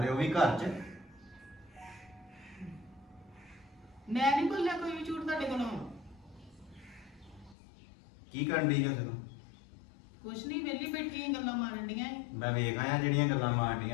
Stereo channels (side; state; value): right; drops out; at 7.6 s